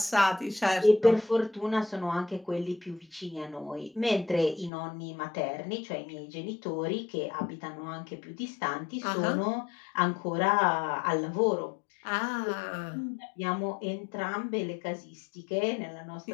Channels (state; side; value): drops out; right; at 4.7 s